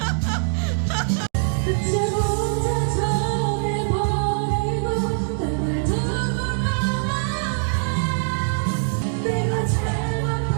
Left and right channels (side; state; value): left; silent; digital silence